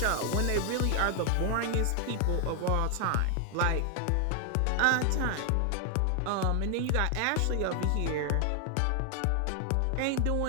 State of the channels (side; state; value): both; different; correlation 0.00